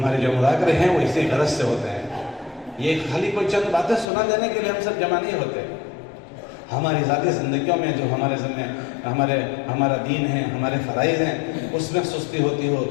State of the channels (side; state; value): right; drops out; at 4.0 s